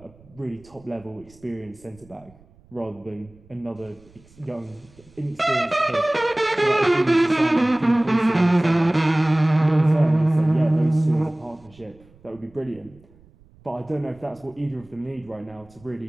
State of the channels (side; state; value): right; noise; rumble, 27 dB below the sound